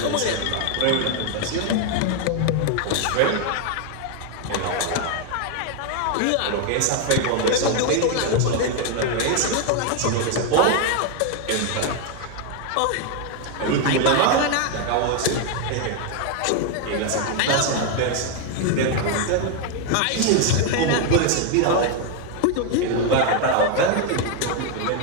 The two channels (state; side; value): different; both; correlation 0.01